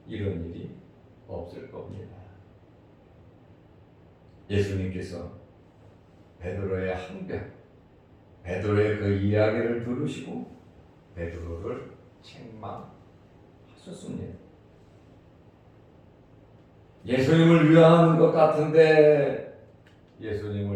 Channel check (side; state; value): both; identical; correlation 1.00